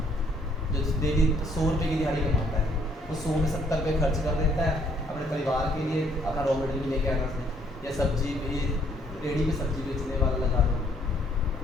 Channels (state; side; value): normal; both; correlation 0.66